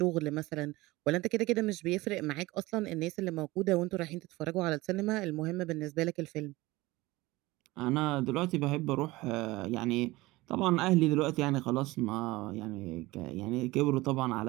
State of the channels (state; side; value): quieter; left; 20.2 dB